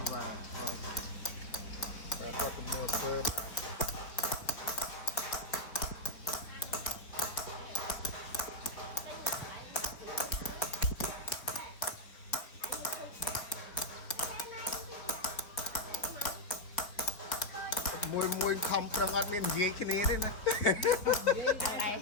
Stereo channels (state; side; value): late; right; 4.1 ms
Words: បាទគាត់កំពុងធ្វើមួយខំប្រឹងអត់មាននិយាយគ្នាទេណានិយ